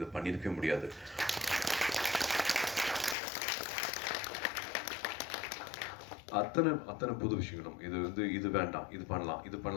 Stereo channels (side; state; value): right; drops out; at 3.2 s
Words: பண்ணியிருக்கவே முடியாது. அத்தனை புது விஷயங்களும் இது வந்து இது வேண்டாம், இது